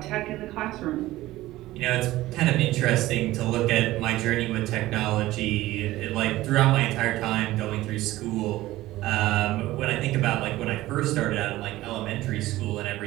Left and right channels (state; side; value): quieter; left; 16.7 dB